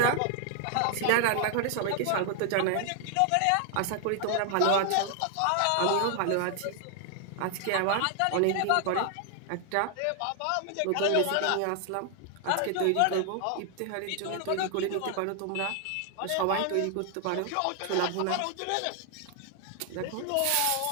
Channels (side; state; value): both; different; correlation 0.00